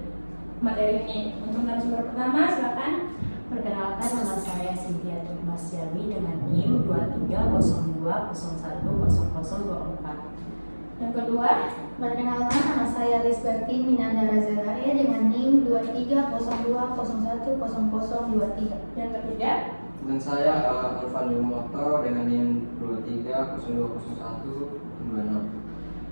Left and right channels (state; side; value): inverted; both; correlation -1.00